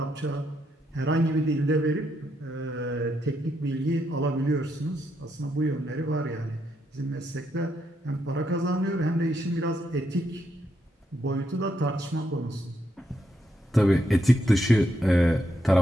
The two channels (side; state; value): both; normal; correlation 0.79